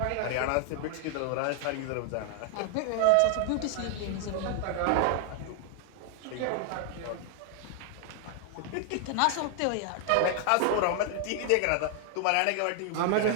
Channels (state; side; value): different; both; correlation 0.00